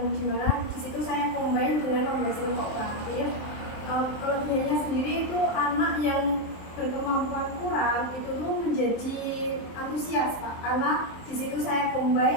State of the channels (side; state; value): right; late; 23 ms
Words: dimana di situ saya combine dengan pembelajaran kooperatif. Kelebihannya sendiri itu anak yang berkemampuan kurang itu tuh menjadi antusias Pak, karena di situ saya